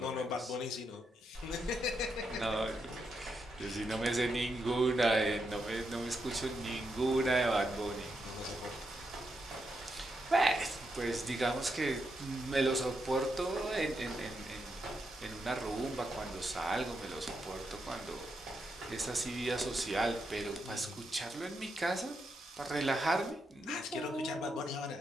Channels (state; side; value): normal; both; correlation 0.83